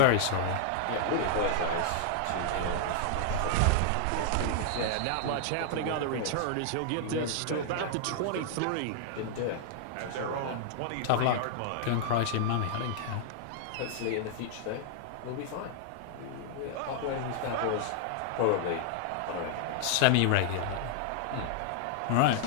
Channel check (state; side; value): different; both; correlation 0.00